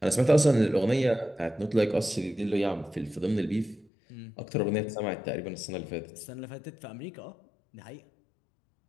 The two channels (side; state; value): right; drops out; at 3.9 s